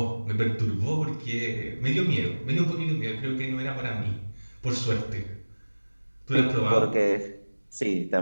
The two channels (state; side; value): inverted; both; correlation -1.00